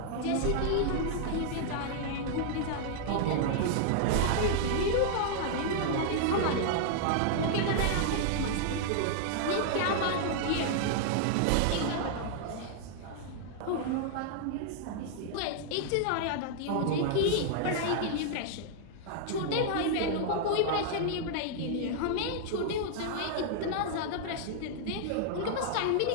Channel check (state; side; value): different; both; correlation -0.01